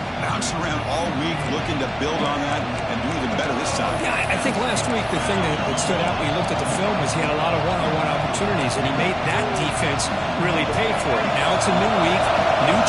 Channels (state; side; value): identical; both; correlation 1.00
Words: bouncing around all week, looking to build on that and do even better this time. Yeah, I think last week the thing that stood out when you looked at the film was he had a lot of one-on-one opportunities, and he made that defense really pay for it. Now it's a new week, new